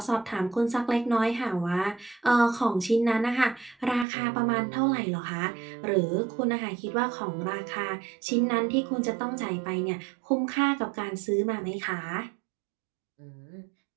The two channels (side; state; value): left; drops out; at 4.0 s